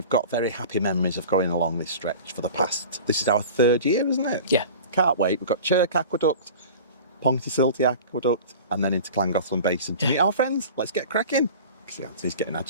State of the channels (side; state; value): both; inverted; correlation -0.39